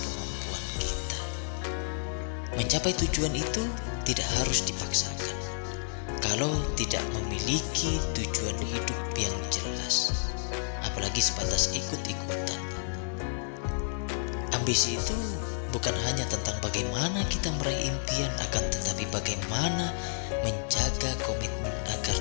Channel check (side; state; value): right; silent; digital silence